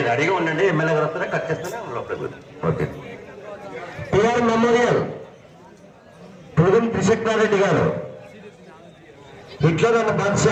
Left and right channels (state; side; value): identical; both; correlation 1.00